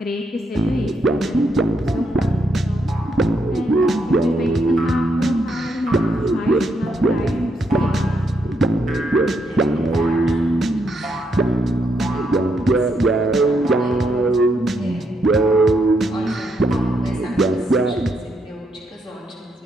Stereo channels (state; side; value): normal; both; correlation 0.78